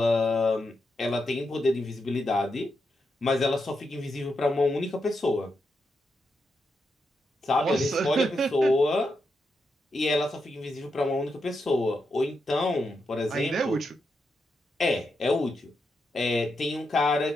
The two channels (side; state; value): both; normal; correlation 0.84